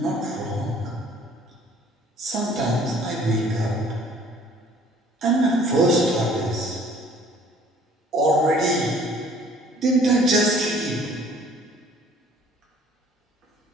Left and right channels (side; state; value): both; normal; correlation 0.55